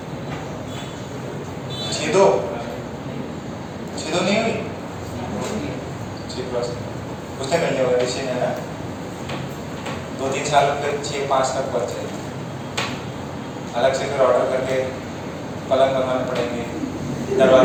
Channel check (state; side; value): identical; both; correlation 1.00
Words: 6-2 नहीं हुई, 6+ उसने कर लिया होगा, ऋषि ने ना 2-3 साल फिर 6-5 तक बढ़ जाएगी। अलग से फिर ऑर्डर करके पलंग बनवाने पड़ेंगे,